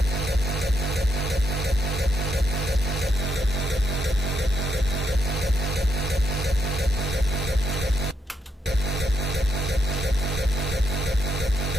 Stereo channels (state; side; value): normal; both; correlation 0.79